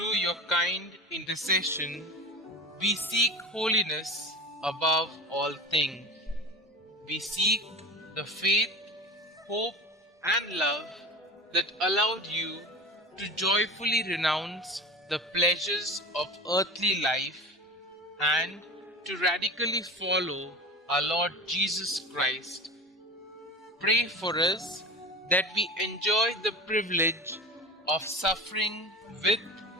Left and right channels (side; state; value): both; normal; correlation 0.32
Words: your kind intercession, we seek holiness above all things. We seek the faith, hope, and love that allowed you to joyfully renounce the pleasures of earthly life and to radically follow our Lord Jesus Christ. Pray for us that we enjoy the privilege of suffering with